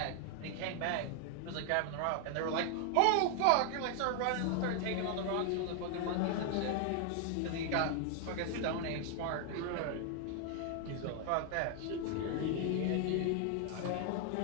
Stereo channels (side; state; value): both; different; correlation 0.00